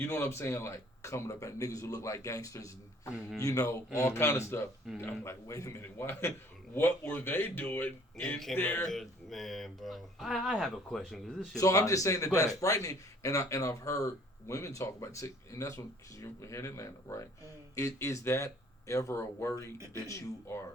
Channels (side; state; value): both; normal; correlation 0.56